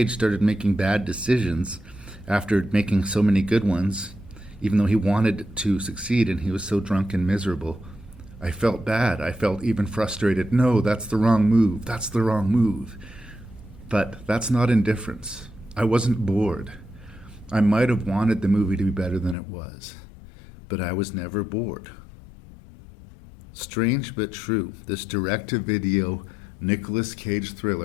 started making bad decisions after making so many good ones, even though he wanted to succeed and he was so drunk and miserable, I felt bad. I felt even frustrated. No, that's the wrong move. That's the wrong move. But that's not indifference. I wasn't bored. I might have wanted the movie to be better than it was, but I was never bored. Strange but true, this direct-to-video Nicolas Cage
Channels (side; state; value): right; drops out; at 19.4 s